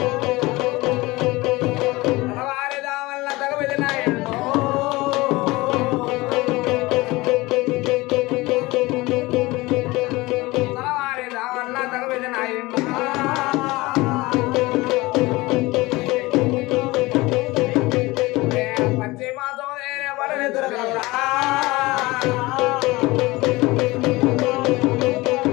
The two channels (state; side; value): quieter; right; 21.2 dB